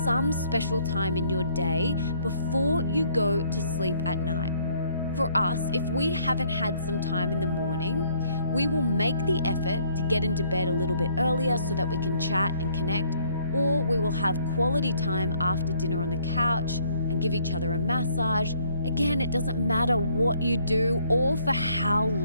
special time in your day before you go to sleep at night. For us, if we haven't had some time in the morning, we will make the effort to get into bed a little bit earlier so that we can chat and connect, or we will have quality time after dinner on the couch and give each other a massage. Again, it doesn't matter what you do or for how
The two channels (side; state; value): both; inverted; correlation -0.64